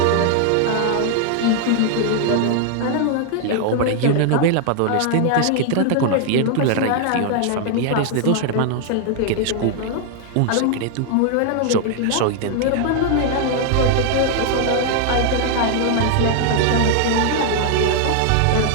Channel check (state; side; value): different; both; correlation 0.00